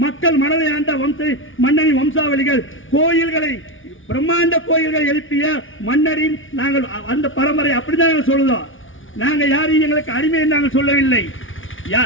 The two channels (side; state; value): right; late; 0.57 ms